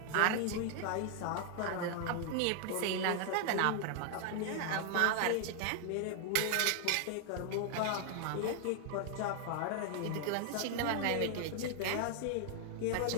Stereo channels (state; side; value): different; both; correlation 0.00